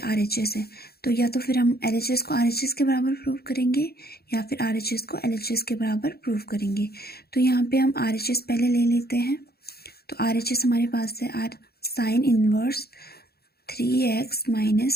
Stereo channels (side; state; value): right; late; 0.46 ms